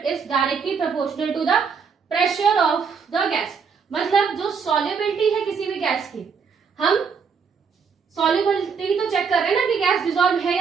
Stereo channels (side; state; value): left; quieter; 5.9 dB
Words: is directly proportional to the pressure of the gas. मतलब जो सॉल्युबिलिटी है किसी भी गैस की, हम सॉल्युबिलिटी तो चेक कर रहे हैं ना कि गैस डिसॉल्व है